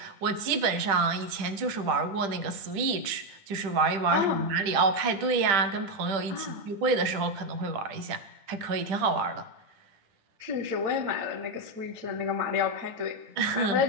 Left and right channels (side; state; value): left; late; 10 ms